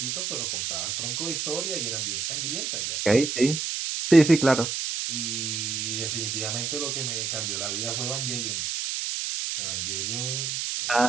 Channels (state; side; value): noise; right; hiss, 2 dB below the sound